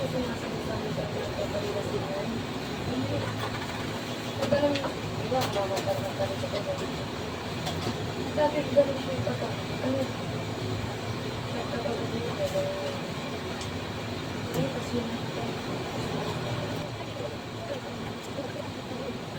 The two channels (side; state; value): both; identical; correlation 1.00